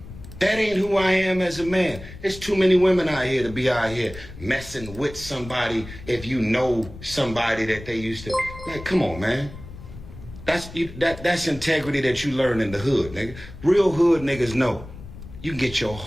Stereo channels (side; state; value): left; noise; rumble, 15 dB below the sound